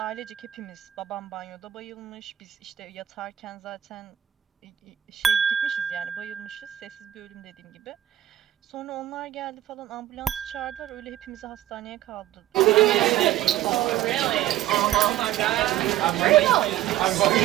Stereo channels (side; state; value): left; quieter; 12.8 dB